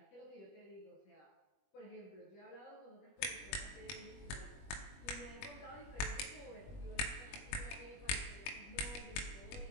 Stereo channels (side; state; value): right; late; 21 ms